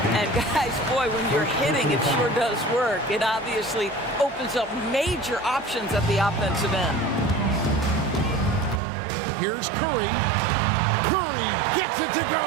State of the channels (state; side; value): drops out; left; at 8.8 s